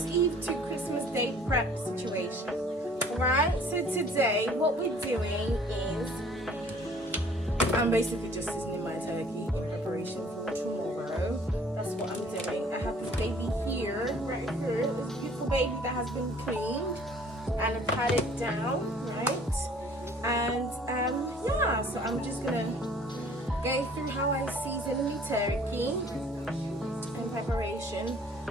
Eve to Christmas Day prep situation. Alright, so today what we're doing is I'm basically just seasoning my turkey in preparation for tomorrow. That's what I'm doing. I have this baby here, right here, this beautiful baby that has been cleaned and I've had it down, right? And yeah, so I'm just gonna go through how I season the turkey in preparation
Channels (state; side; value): normal; both; correlation 0.54